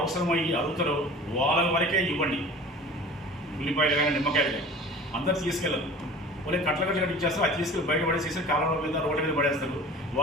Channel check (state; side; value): normal; both; correlation 0.42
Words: అడుగుతారో వాళ్ళ వరకే ఇవ్వండి. ఉల్లిపాయలు కానీ నిమ్మకాయలు కానీ అందరు తీసుకెళ్ళరు. వాళ్ళే కట్ల కట్టి ఇచ్చేస్తారు. అది తీసుకెళ్ళి బయట పడేసేసి కాలంలో మీద రోడ్ల మీద పడేస్తారు.